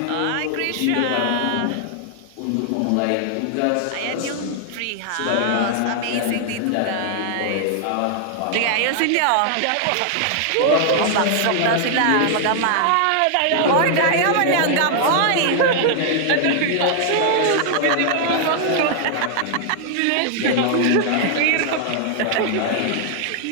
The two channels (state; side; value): different; both; correlation 0.00